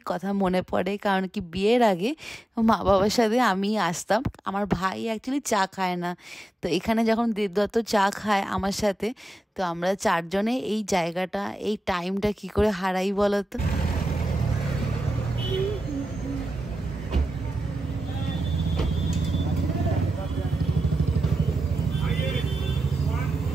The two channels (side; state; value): both; normal; correlation 0.91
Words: কথা মনে পড়ে, কারণ কি বিয়ের আগে মা বাবার সাথে আমি আসতাম। আমার ভাই অ্যাকচুয়ালি চা খায় না, তো এখানে যখন দেবদত্ত চা খায় আমার সাথে, তো আমরা চারজনে এই জায়গাটা এই টাইমটা কি করে হারাই বলো তো।